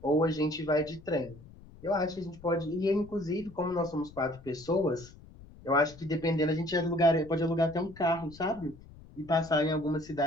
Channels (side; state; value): left; noise; rumble, 20 dB below the sound